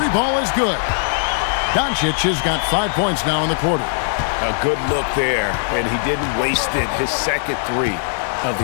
ball is good. Doncic has got 5 points now in the quarter. A good look there, and he didn't waste it. His second three of the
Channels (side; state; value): right; silent; 66 dB below the other